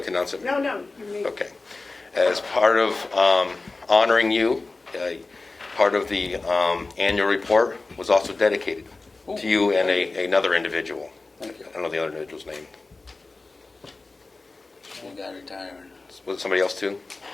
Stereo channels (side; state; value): right; quieter; 3.5 dB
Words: to announce it? No, you may. Okay. As part of honoring you, part of the annual report was also dedicated to you and another individual. Thank you. I don't know the other individual's name. One guy retiring. Was it somebody else too?